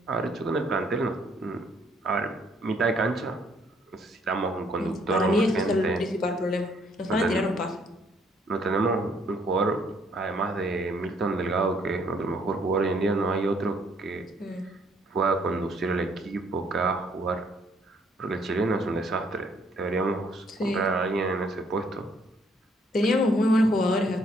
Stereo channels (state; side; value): normal; both; correlation 0.66